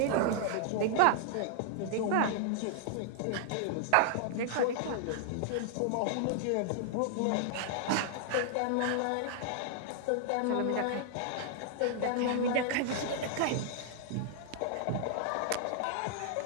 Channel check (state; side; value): different; both; correlation -0.01